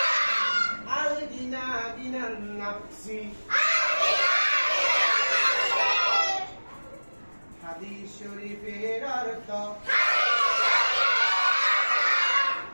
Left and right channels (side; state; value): both; inverted; correlation -1.00